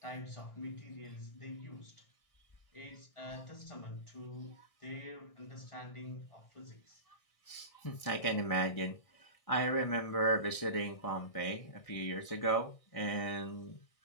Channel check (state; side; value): late; right; 1.6 ms